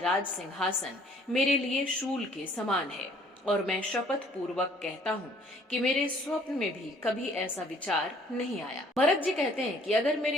सिंहासन मेरे लिए शूल के समान है और मैं शपथ पूर्वक कहता हूँ कि मेरे स्वप्न में भी कभी ऐसा विचार नहीं आया। भरत जी कहते हैं कि अगर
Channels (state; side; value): normal; both; correlation 0.58